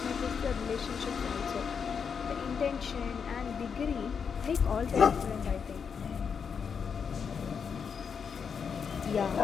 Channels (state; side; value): quieter; right; 6.5 dB